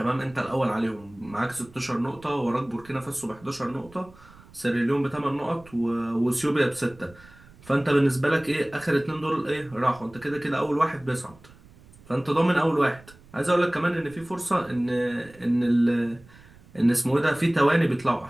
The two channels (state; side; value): noise; right; rumble, 24 dB below the sound